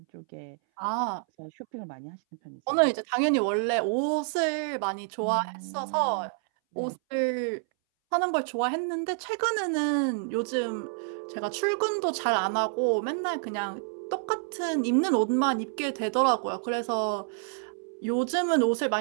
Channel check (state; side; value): silent; left; 59 dB below the other